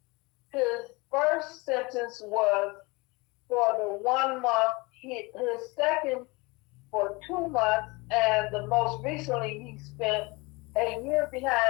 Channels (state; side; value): quieter; right; 25.5 dB